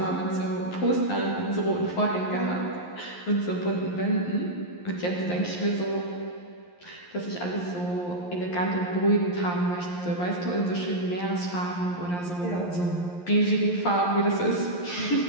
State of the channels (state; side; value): late; right; 11 ms